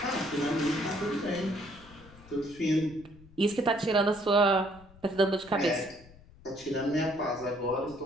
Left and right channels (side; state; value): left; noise; rumble, 23 dB below the sound